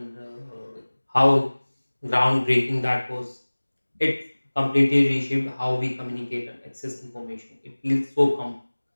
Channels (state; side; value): inverted; both; correlation -1.00